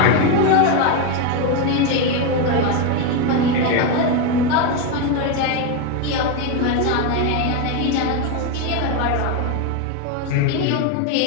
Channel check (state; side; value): different; both; correlation 0.02